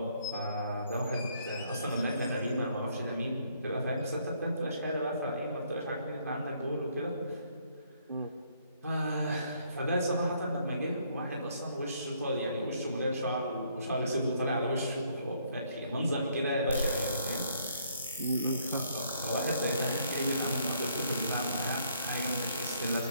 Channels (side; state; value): both; inverted; correlation -0.68